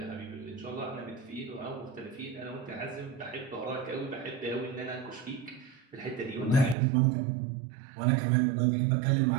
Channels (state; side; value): drops out; left; at 6.8 s